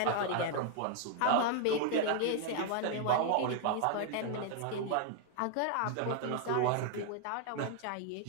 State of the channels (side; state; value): both; different; correlation 0.00